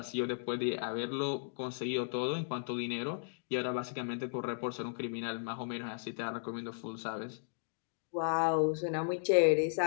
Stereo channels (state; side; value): silent; right; digital silence